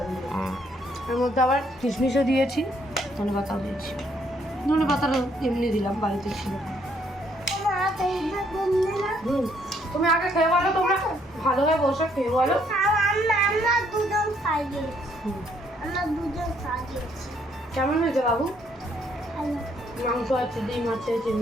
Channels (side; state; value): both; normal; correlation 0.69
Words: এর মধ্যে আবার কিশমিশও দিয়েছি, ধনে পাতাও দিয়েছি। ধনে পাতাটা এমনি দিলাম, বাড়িতে ছিল। তুমি আগে খেয়ে বলো, তোমরা ভালোভাবে বসে খেয়ে বলো। কেমন হয়েছে বাবু? মাংস আছে, ডিম আছে,